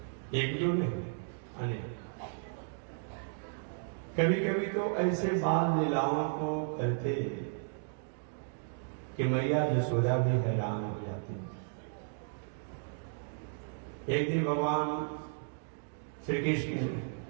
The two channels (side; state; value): left; silent; digital silence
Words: एक दो नहीं अनेक। कभी कभी तो ऐसे बाल लीलाओं को करते कि मैया यशोदा भी हैरान हो जाती। एक दिन भगवान श्री कृष्ण